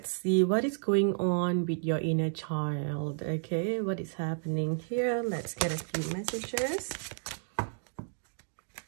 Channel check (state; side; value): silent; left; digital silence